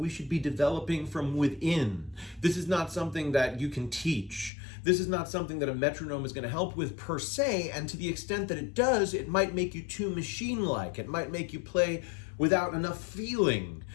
should be developing from within. This is not something that you can teach. This is not something that a metronome is going to help with per se, and to the extent that it does, it might make you too machine-like. It might make you play without enough feeling.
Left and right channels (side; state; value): right; drops out; at 4.5 s